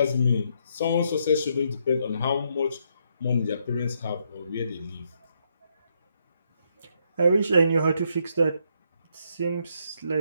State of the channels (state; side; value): inverted; both; correlation -0.75